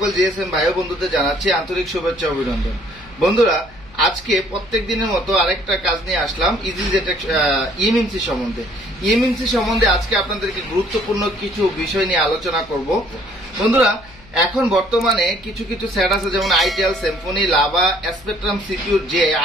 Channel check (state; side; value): noise; left; hum, 24 dB below the sound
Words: জিএসএম ভাই ও বন্ধুদের জানাচ্ছি আন্তরিক শুভেচ্ছা অভিনন্দন। বন্ধুরা, আজকে প্রত্যেক দিনের মতো আরেকটা কাজ নিয়ে আসলাম Jtag ইএমসি সম্বন্ধে। ইএমসি সম্বন্ধে আজকে আপনাদেরকে গুরুত্বপূর্ণ কিছু বিষয় নিয়ে আলোচনা করব। বন্ধুরা, এখন বর্তমানে কিছু কিছু সেট আছে, যেমন itel, Symphony, lava, spectrum, secure যে